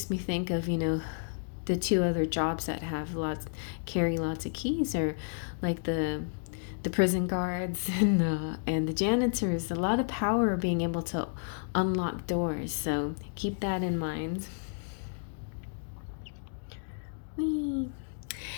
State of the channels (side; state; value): right; silent; digital silence